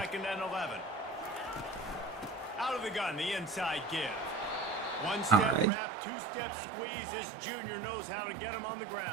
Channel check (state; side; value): drops out; left; at 5.7 s